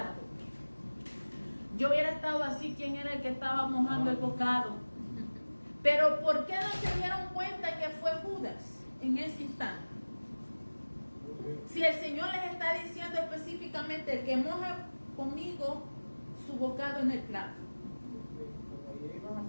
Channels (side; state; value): both; inverted; correlation -1.00